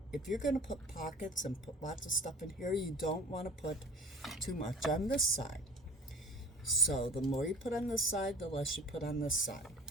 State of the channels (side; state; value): both; normal; correlation 0.43